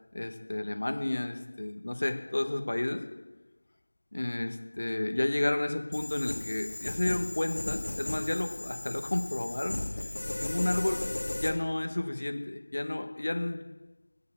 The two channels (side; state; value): both; inverted; correlation -1.00